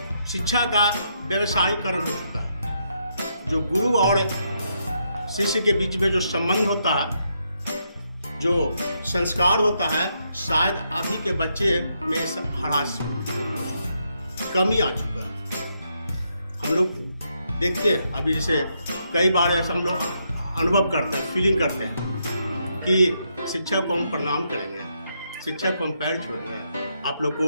शिक्षा का व्यवसायीकरण हो चुका है। जो गुरु और शिष्य के बीच में जो संबंध होता है, जो संस्कार होता है, शायद अभी के बच्चे में ह्रास, कमी आ चुका है। हम लोग देखते हैं अभी, जैसे कई बार ऐसा हम लोग अनुभव करते हैं, फीलिंग करते हैं कि शिक्षक को हम प्रणाम करेंगे, शिक्षक को हम पैर छुएंगे। आप लोग को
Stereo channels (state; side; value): inverted; both; correlation -0.78